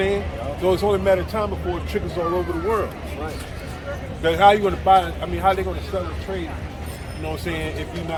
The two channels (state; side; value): identical; both; correlation 1.00